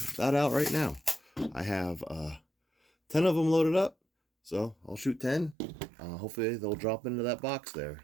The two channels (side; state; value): left; drops out; at 5.6 s